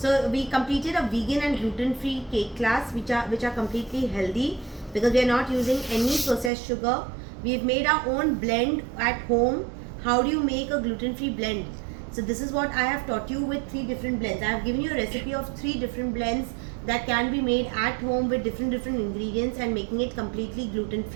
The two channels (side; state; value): left; drops out; at 6.5 s